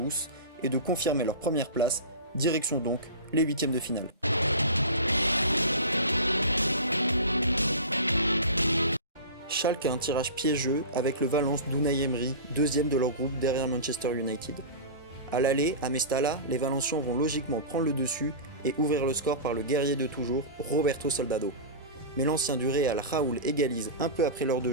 et de confirmer leur première place, direction donc les huitièmes de finale. Schalke a un tirage piégeux avec le Valence d'Unai Emery, deuxième de leur groupe derrière Manchester United. À l'aller, à Mestalla, les Valencians vont logiquement prendre le dessus et ouvrir le score par le guerrier de toujours, Roberto Soldado. Mais l'ancien du Real, Raúl, égalise un peu après l'heure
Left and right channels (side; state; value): both; inverted; correlation -0.30